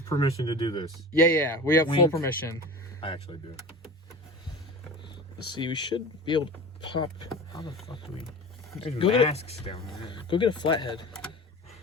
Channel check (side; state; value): both; normal; correlation 0.34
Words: permission to do this. Yeah, we have full permission. I actually do. Let's see, we should be able to pop. How the fuck do we... There's masks down there. Go get a flathead.